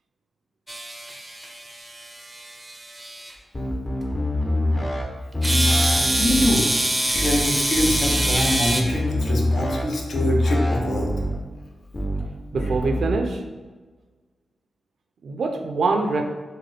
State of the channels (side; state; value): both; normal; correlation 0.92